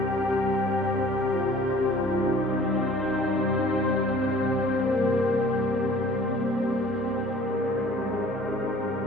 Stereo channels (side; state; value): both; normal; correlation 0.50